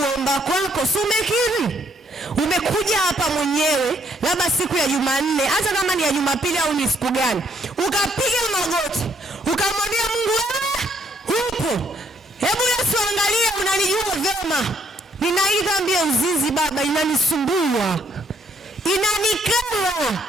kwako si umekiri. Umekuja hapa mwenyewe labda siku ya Jumanne, hata kama ni ya Jumapili au ni siku gani, ukapiga magoti, ukamwambia Mungu wewe upo. Hebu Yesu angalia, unanijua vyema. Nina hii dhambi ya uzinzi Baba, inanisumbua, inanikera.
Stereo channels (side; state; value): both; normal; correlation 0.69